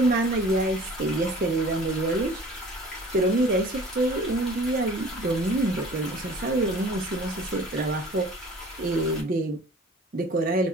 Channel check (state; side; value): normal; both; correlation 0.46